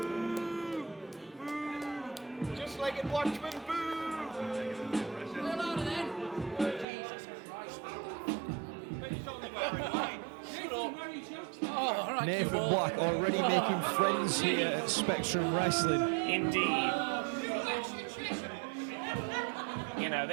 Just like in Watchmen, boo! We're louder then. Jesus Christ. He's only wearing white. Oh, all right, Nathan Q-Ball. Black already making friends here at Spectrum Wrestling. Indeed. You know,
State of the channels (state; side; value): drops out; left; at 6.9 s